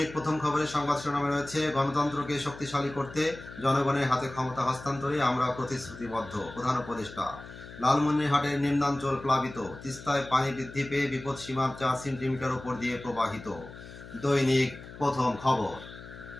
প্রথম খবরের সংবাদ শিরোনামে রয়েছে গণতন্ত্রকে শক্তিশালী করতে জনগণের হাতে ক্ষমতা হস্তান্তরে আমরা প্রতিশ্রুতিবদ্ধ। প্রধান উপদেষ্টা। লালমনিরহাটের নিম্নাঞ্চল প্লাবিত, তিস্তায় পানি বৃদ্ধি পেয়ে বিপদ সীমার 4 সেন্টিমিটার উপর দিয়ে প্রবাহিত। দৈনিক প্রথম খবর।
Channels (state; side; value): noise; left; hum, 15 dB below the sound